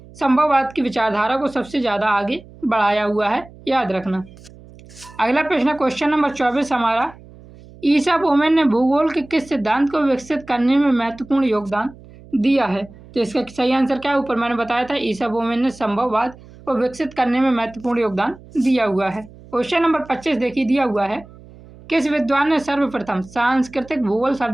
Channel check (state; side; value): noise; right; hum, 21 dB below the sound